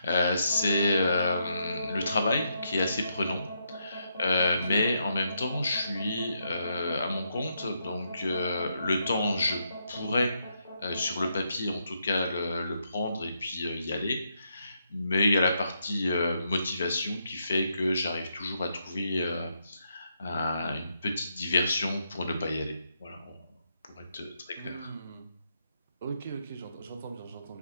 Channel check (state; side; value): inverted; both; correlation -0.79